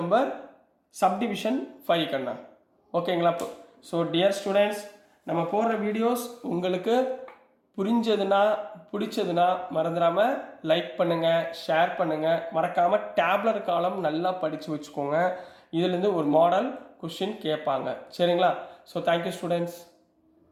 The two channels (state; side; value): identical; both; correlation 1.00